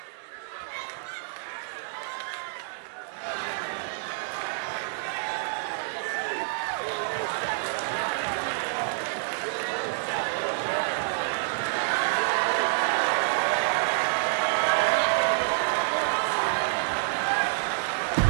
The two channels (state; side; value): silent; left; 59 dB below the other